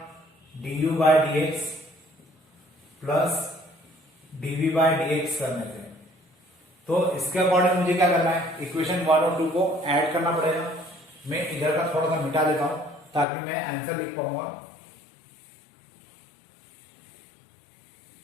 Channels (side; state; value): right; drops out; at 13.2 s